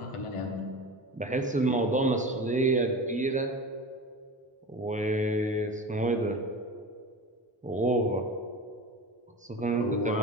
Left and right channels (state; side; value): normal; both; correlation 0.31